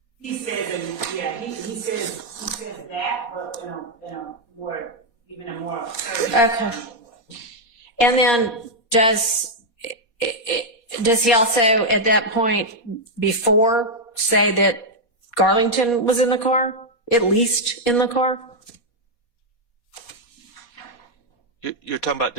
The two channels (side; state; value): right; late; 4.2 ms